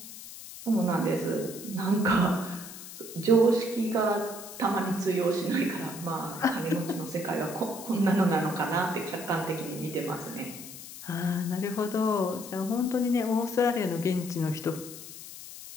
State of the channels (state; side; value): noise; left; hiss, 13 dB below the sound